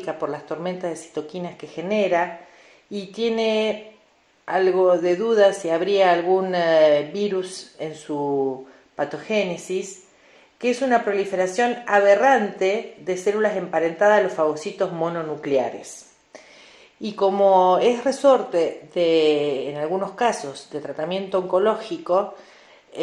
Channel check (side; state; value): both; identical; correlation 1.00